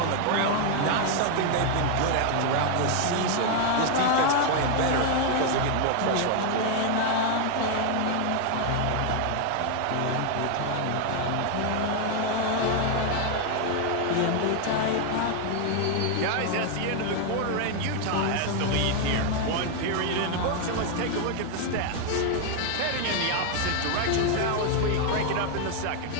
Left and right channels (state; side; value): different; both; correlation 0.00